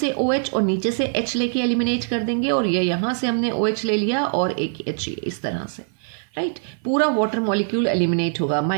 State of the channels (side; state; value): left; silent; 56 dB below the other